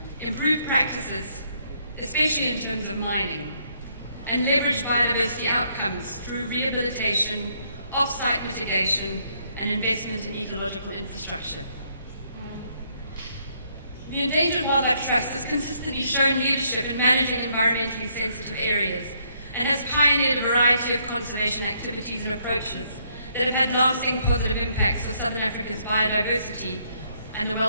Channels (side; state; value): both; inverted; correlation -0.70